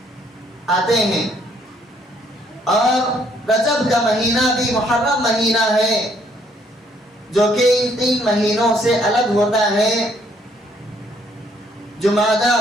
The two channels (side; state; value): both; normal; correlation 0.67